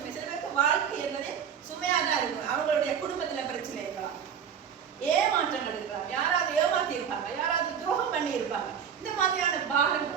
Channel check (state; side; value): quieter; left; 7.8 dB